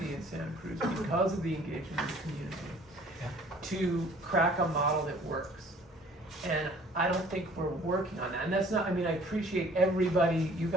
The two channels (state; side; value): normal; both; correlation 0.53